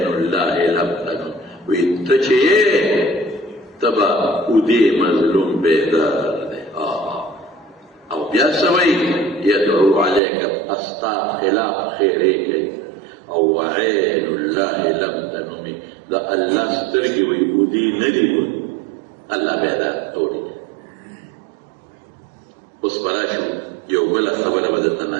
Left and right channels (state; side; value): drops out; left; at 10.2 s